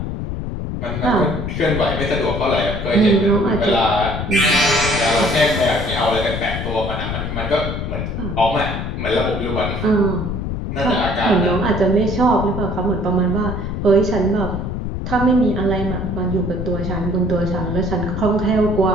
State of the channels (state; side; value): noise; left; rumble, 4 dB below the sound